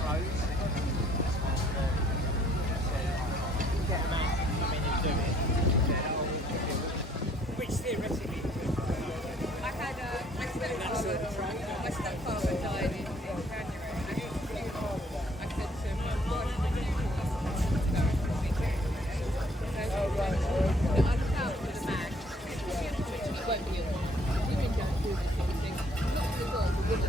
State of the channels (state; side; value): normal; both; correlation 0.62